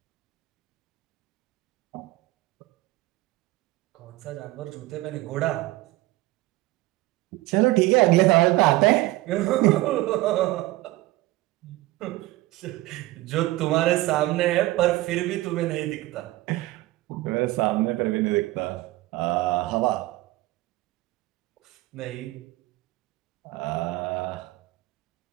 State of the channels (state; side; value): quieter; left; 18.6 dB